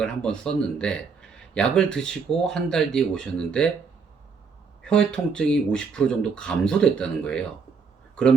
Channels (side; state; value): left; quieter; 5.4 dB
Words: 한번 썼는데 약을 드시고 한 달 뒤에 오셨는데 혀의 통증이 50% 정도 감소됐다는 거예요.